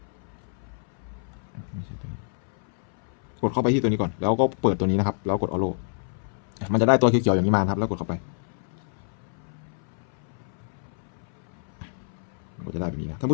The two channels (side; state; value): right; silent; 59 dB below the other